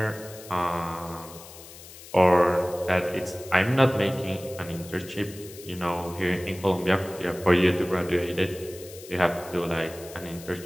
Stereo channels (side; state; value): left; noise; hiss, 17 dB below the sound